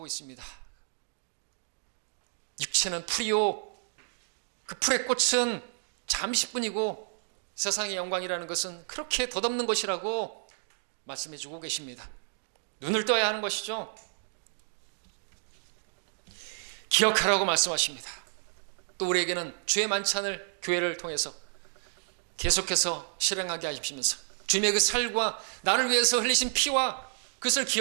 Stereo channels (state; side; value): silent; left; digital silence